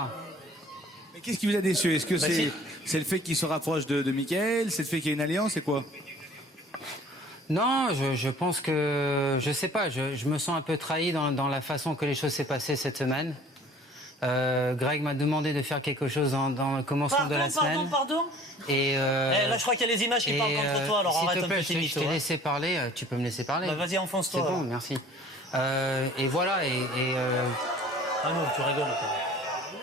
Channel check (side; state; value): both; normal; correlation 0.50